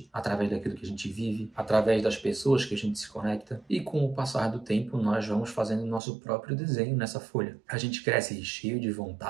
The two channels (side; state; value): left; drops out; at 6.0 s